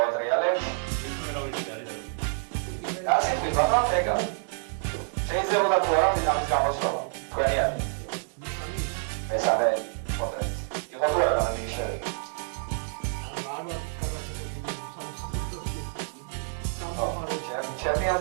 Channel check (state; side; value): silent; left; digital silence